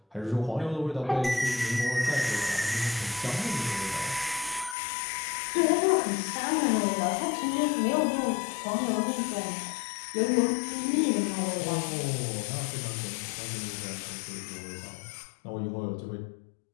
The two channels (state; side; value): drops out; right; at 4.8 s